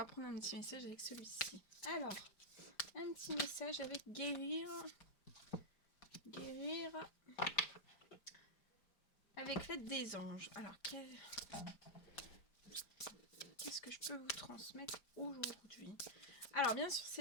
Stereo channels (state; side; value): late; right; 5.0 ms